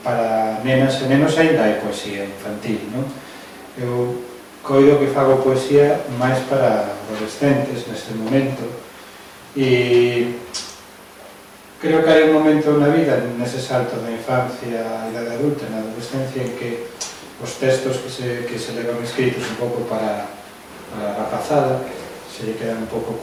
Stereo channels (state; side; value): identical; both; correlation 1.00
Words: para nenas e nenos ainda hai poesía infantil, non? Eu coido que fago poesía máis para adolescentes neste momento e creo que hai un momento na vida, nese salto da infancia á idade adulta, na adolescencia, en que os textos que se levan escritos un pouco para a rapazada se lle quedan un pouco